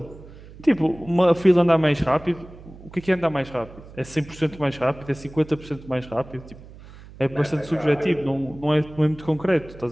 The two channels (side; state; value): right; noise; hum, 19 dB below the sound